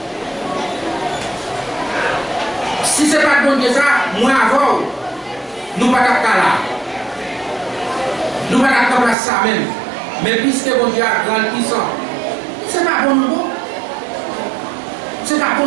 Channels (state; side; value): drops out; left; at 9.2 s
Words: Si ce n'est pas bon Dieu, ça, moi avant, nous ne pouvons pas là. Nous ne pouvons pas faire ça même. Mais puisque mon Dieu a grand puissant, ce n'est pas bon nous. Ce n'est pas bon